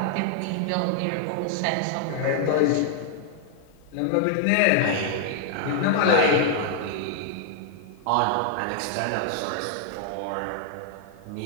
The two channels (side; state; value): both; different; correlation 0.00